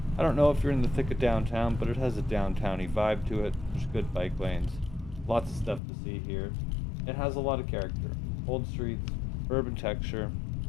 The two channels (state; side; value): drops out; right; at 5.8 s